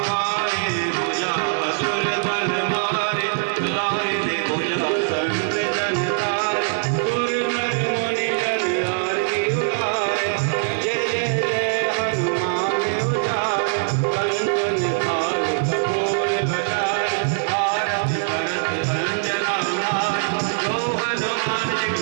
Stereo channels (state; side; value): silent; left; digital silence